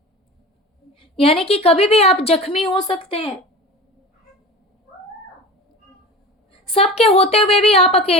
यानी कि कभी भी आप जख्मी हो सकते हैं। सबके होते हुए भी आप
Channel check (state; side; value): normal; both; correlation 0.34